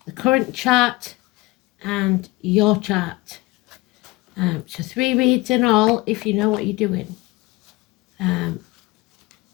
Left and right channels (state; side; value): quieter; right; 21.5 dB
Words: The current chart and your chart. So 3 reads in all if you know what you're doing.